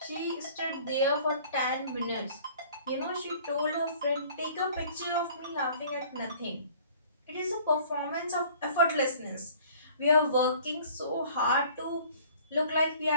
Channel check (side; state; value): both; inverted; correlation -0.51